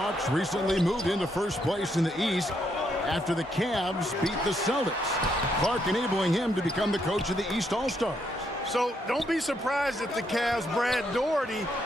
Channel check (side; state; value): both; normal; correlation 0.75